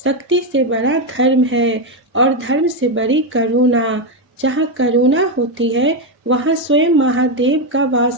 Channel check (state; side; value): normal; both; correlation 0.06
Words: शक्ति से बड़ा धर्म है और धर्म से बड़ी करुणा। जहाँ करुणा होती है वहाँ स्वयं महादेव का